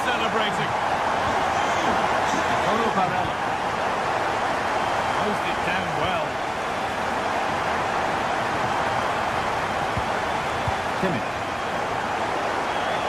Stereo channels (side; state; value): both; identical; correlation 1.00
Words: celebrating. Paulo Barella. Closed it down well. Kimmich.